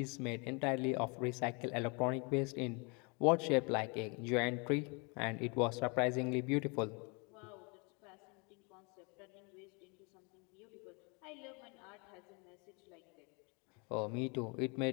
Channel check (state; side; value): quieter; right; 31.8 dB